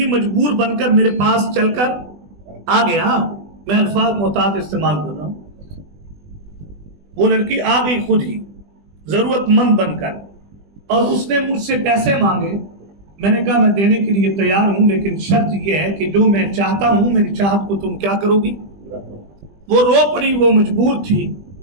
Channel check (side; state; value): left; late; 20 ms